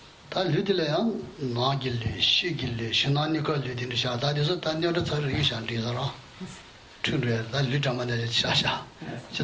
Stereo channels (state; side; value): identical; both; correlation 1.00